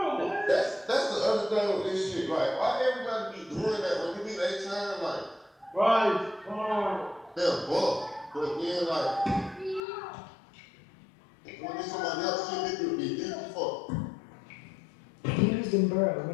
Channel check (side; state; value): right; drops out; at 9.8 s